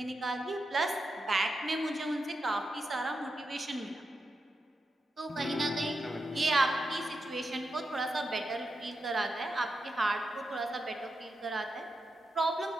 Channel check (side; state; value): both; normal; correlation 0.87